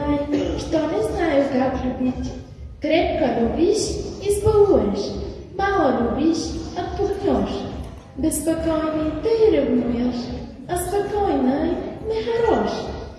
что не знаю, как любить. Крепко любишь — избалуешь, мало любишь — отпугнешь. Беспокойный ты ревнуешь, а спокойный не хорош.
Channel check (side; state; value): both; identical; correlation 1.00